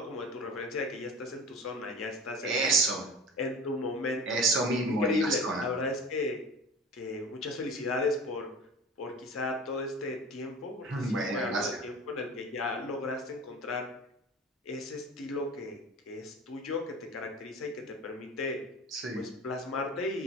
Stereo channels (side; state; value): both; normal; correlation 0.36